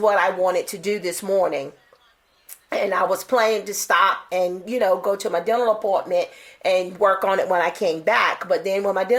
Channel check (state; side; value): identical; both; correlation 1.00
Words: I wanted to do this morning. And I was planning to stop and, go to my dental appointment and work on it when I came back. But then when my